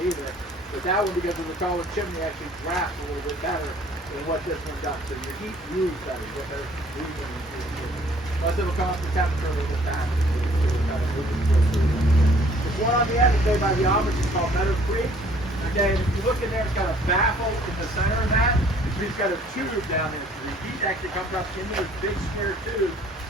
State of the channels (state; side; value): normal; both; correlation 0.57